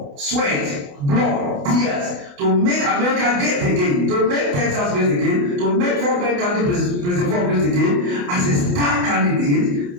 sweat, blood, tears, to make America great again, to make Texas great again, to make Fort Bend County President Ford great again, as a star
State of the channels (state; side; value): late; left; 28 ms